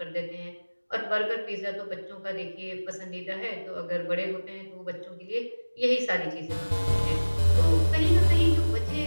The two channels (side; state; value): both; inverted; correlation -1.00